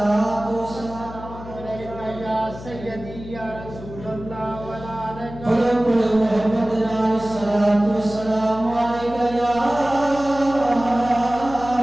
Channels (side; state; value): left; noise; hum, 14 dB below the sound